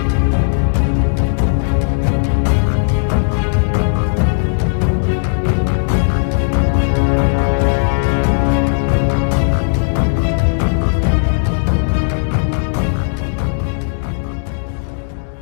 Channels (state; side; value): silent; right; digital silence